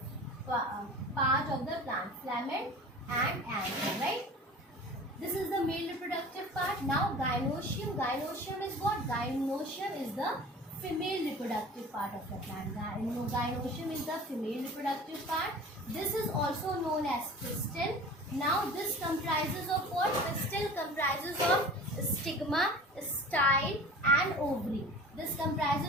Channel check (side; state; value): both; normal; correlation 0.40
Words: part of the plant, filament and anther, right. This is the male reproductive part. Now gynoecium. Gynoecium is what? Gynoecium is the female reproductive part of the plant. Gynoecium is the female reproductive part. This is also known as pistil. Now this comprises of what? Pistil comprises of stigma, style and ovary. This